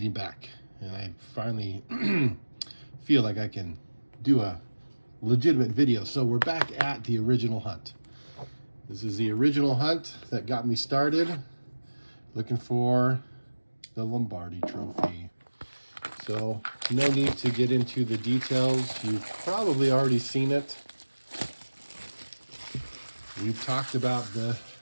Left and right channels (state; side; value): inverted; both; correlation -1.00